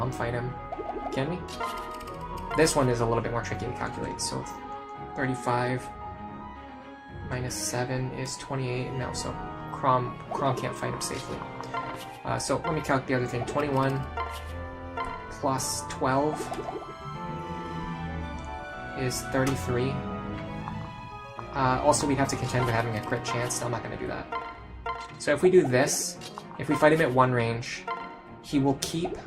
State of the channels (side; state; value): both; identical; correlation 1.00